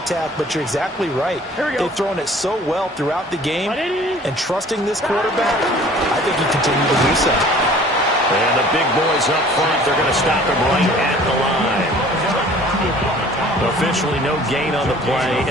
but you're exactly right. They've thrown it so well throughout the game, and trusting this quarterback, I think he continued to do so. And the big boys up front, they're going to stop him right at the line. Officially no gain on the play,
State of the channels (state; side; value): normal; both; correlation 0.50